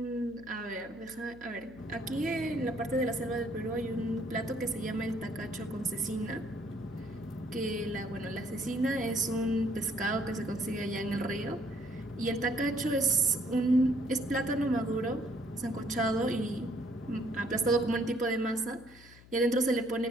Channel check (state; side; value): noise; left; hum, 22 dB below the sound